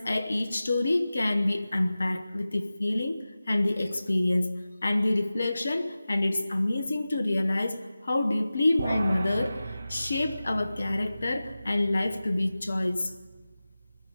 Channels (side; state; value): both; inverted; correlation -0.96